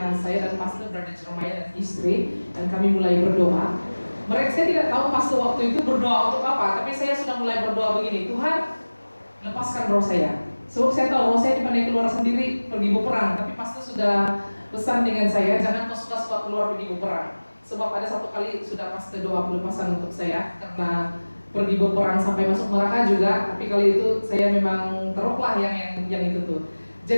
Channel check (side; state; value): both; inverted; correlation -1.00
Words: saya dan Pastor Brother Jeremiah dan istri, dan kami mulai berdoa. Saya tidak tahu Pastor waktu itu berdoa untuk apa, tapi saya sudah mulai berdoa begini, Tuhan lepaskan roh saya. Sebab saya tahu roh saya dipandai keluar sendiri pergi berperang, tapi Pastor sudah pesan dengan saya, jangan kau suka-suka keluar pergi berperang. Sebab ada satu kali sudah pas doa pelepasan untuk saya karena pergi berperang sampai masuk neraka juga. Tapi kali itu saya memang teruklah yang itu tuh.